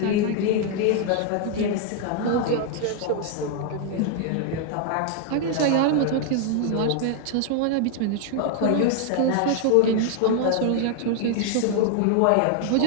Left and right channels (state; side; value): different; both; correlation 0.00